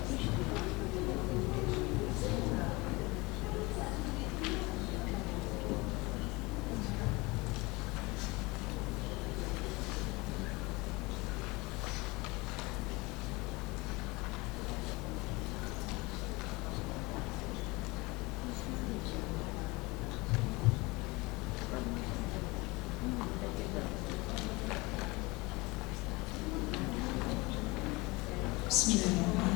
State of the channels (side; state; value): right; quieter; 24.1 dB